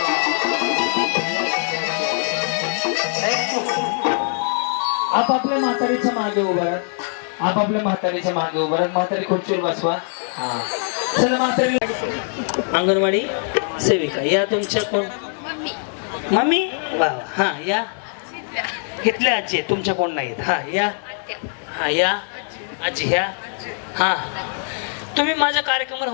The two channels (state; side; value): silent; right; 56 dB below the other